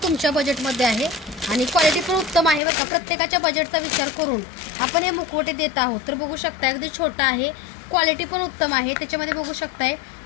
तुमच्या बजेटमध्ये आहे आणि क्वालिटी पण उत्तम आहे बघा. प्रत्येकाच्या बजेटचा विचार करून आपण हे मुखवटे देत आहोत. तर बघू शकता अगदी छोटा आहे, क्वालिटी पण उत्तम आहे. त्याच्यामध्ये बघू शकताय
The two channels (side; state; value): right; drops out; at 2.6 s